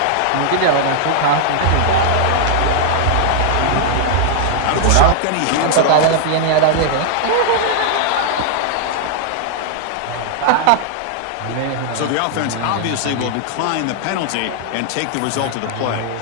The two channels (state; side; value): different; both; correlation -0.01